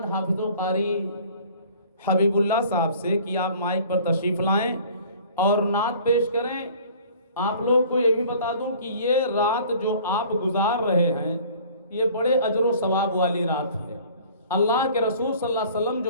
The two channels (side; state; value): both; inverted; correlation -0.50